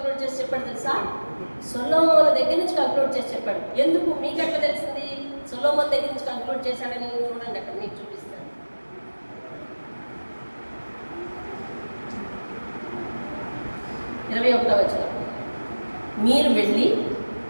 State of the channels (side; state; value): both; inverted; correlation -1.00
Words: చేసి చెప్పాడు తెలుసా? సొలొమోను దగ్గర నుంచి కంక్లూడ్ చేసి చెప్పాడు. ఎందుకు మీకు ఎట్లా తెలిసింది సొలొమోను దగ్గర నుంచి కంక్లూడ్ చేశాడని? చూడండి, అక్కడ మీకు చూపిస్తాను. 21వ వచనం, మీరు వెళ్ళి